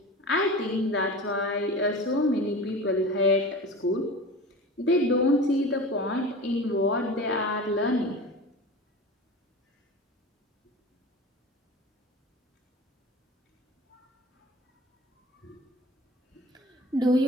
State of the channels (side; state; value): both; normal; correlation 0.35